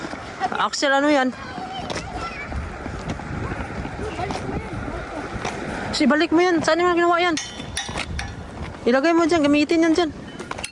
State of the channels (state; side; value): identical; both; correlation 1.00